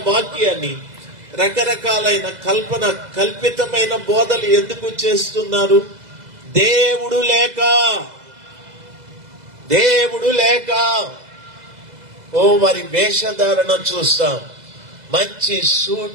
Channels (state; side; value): late; left; 2.0 ms